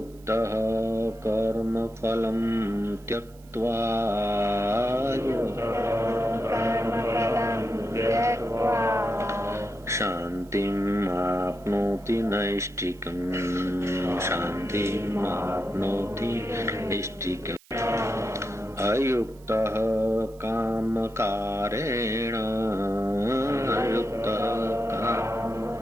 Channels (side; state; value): right; noise; hiss, 27 dB below the sound